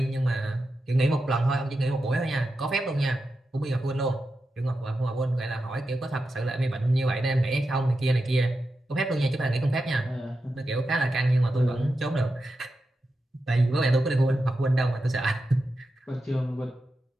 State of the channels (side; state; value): both; normal; correlation 0.89